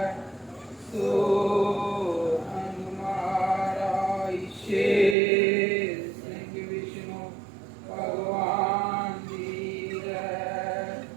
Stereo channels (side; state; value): left; drops out; at 5.2 s